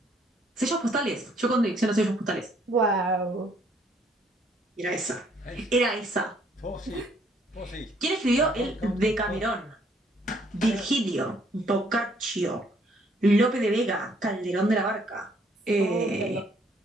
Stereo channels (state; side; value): normal; both; correlation 0.66